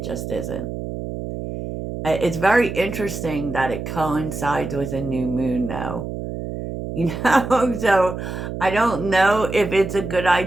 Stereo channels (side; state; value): right; noise; hum, 6 dB below the sound